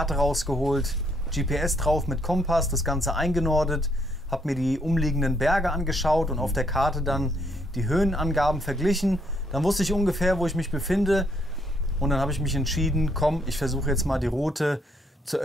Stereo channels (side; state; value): both; normal; correlation 0.71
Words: rausgeholt, GPS drauf mit Kompass, das Ganze eingenordet, habe mir die umliegenden Berge angeschaut und auf der Karte dann die Höhenangaben verglichen. Dann wusste ich ungefähr, wo ich mich befinde und dann habe ich mich entschieden, komm, ich versuche jetzt mal die Route zur